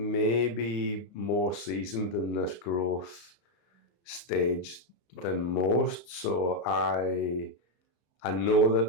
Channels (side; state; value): right; late; 32 ms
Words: more seasoned in this growth stage than most. So I know